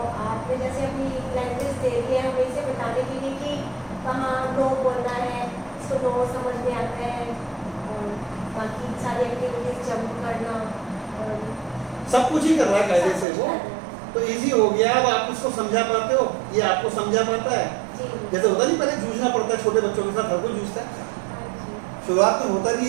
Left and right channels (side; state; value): left; drops out; at 13.2 s